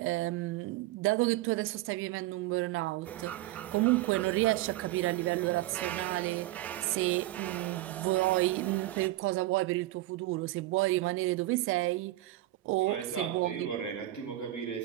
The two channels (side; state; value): left; quieter; 16.4 dB